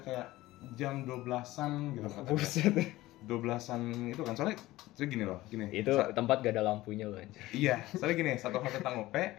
kayak jam 12-an gitu kan. Buset. 12-an itu kan. Soalnya gini. Itu tempat gak ada lampunya loh anjir. Iya, soalnya gini, satu hal tentang UP,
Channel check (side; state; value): right; quieter; 17.5 dB